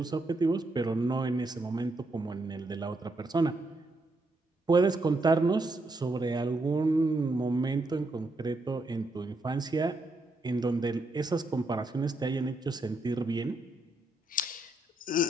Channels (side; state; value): both; normal; correlation 0.80